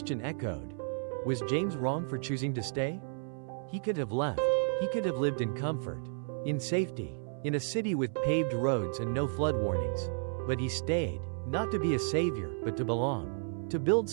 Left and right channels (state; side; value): silent; left; 56 dB below the other